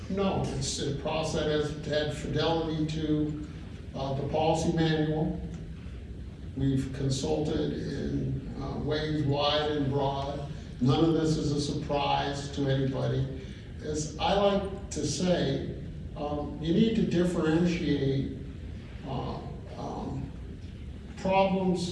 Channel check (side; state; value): both; identical; correlation 1.00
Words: No, it's a process that has had fidelity to the policy manual. We've consulted in ways wide and broad. None of this is a surprise to anybody. As I like to say, you need to differentiate